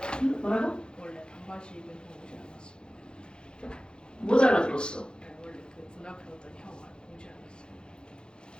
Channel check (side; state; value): right; late; 0.049 ms